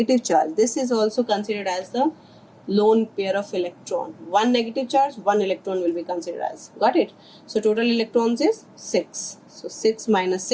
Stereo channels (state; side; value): identical; both; correlation 1.00